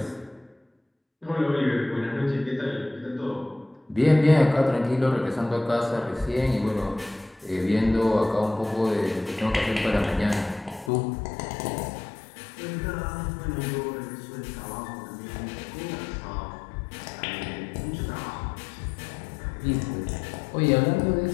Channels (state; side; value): drops out; right; at 10.9 s